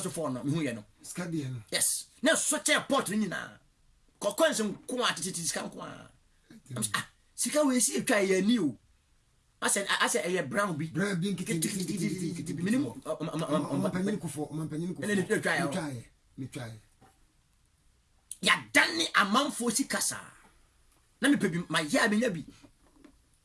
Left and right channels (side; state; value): both; identical; correlation 1.00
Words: for no mehu ye no skadi no yes na so che port nyina kokonse nko a titi sika nko a sika we si etwa ye ni o ase eye brown bi nkiti minimum mampanyin kufo ene etwa ye ya dani amanfo sikasa na me pebi ma ya benya bi